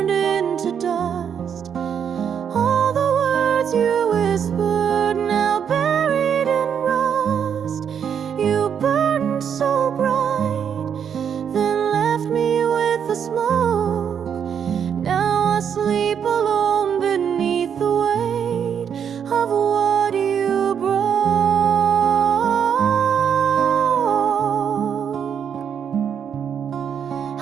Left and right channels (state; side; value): quieter; left; 7.9 dB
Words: whispered, now buried in rust. You burned so bright, then left me with the smoke. Now I sleep alone beneath the weight of what you broke.